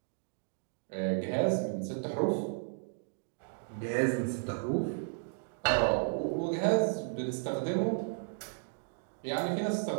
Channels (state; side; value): silent; left; digital silence